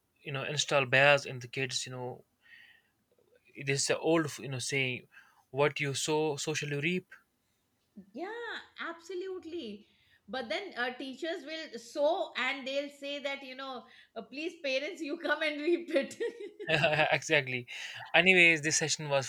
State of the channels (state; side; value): identical; both; correlation 1.00